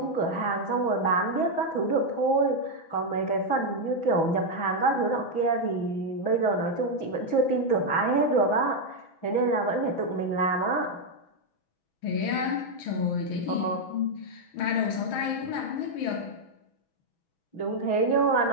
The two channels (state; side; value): late; right; 6.1 ms